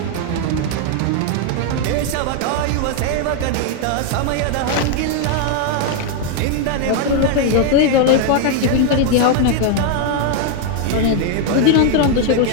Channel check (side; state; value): both; different; correlation 0.00